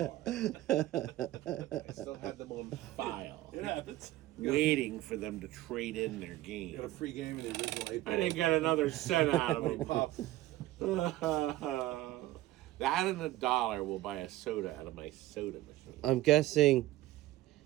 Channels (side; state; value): left; quieter; 16.1 dB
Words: I still had them on file. It happens. Waiting for them to trade in their game. Got a free game in the original 8 I didn't get another cent out of them. Pop. That and $1 will buy a soda out of my soda machine. I'm guessing